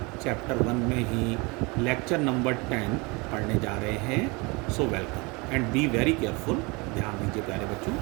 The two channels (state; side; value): quieter; left; 27.2 dB